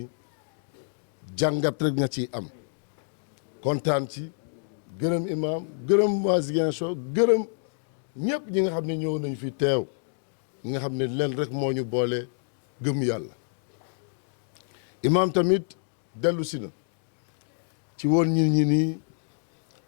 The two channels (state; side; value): silent; right; digital silence